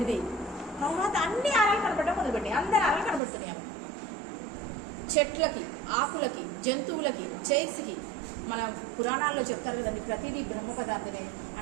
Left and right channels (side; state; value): left; drops out; at 3.2 s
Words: తర్వాత అన్ని ఆరాలు కనబడడం మొదలుపెట్టి అందరి ఆరాలు కనబడుతున్నాయి. చెట్లకి, ఆకులకి, జంతువులకి, చైర్స్కి. మన పురాణాల్లో చెప్తారు కదండి ప్రతిదీ బ్రహ్మ పదార్థమే,